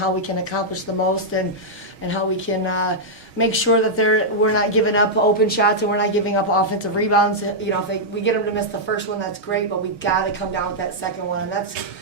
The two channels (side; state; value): left; late; 6.4 ms